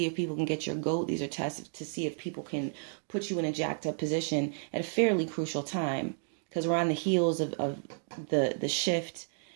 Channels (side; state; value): left; silent; digital silence